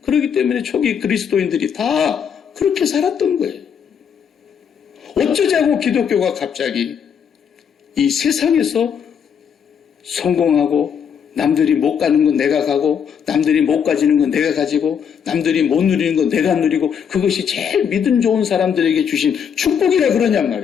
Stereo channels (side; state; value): right; quieter; 7.6 dB